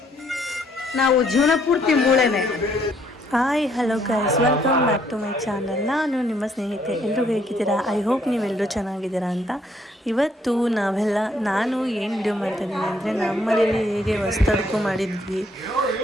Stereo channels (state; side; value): normal; both; correlation 0.68